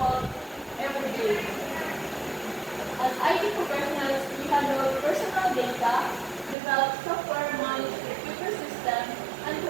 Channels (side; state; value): left; drops out; at 6.6 s